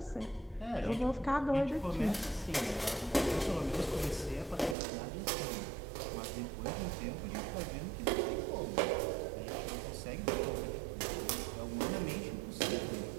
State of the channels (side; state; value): left; drops out; at 4.8 s